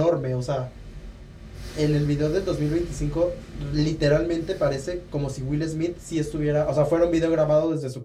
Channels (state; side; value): identical; both; correlation 1.00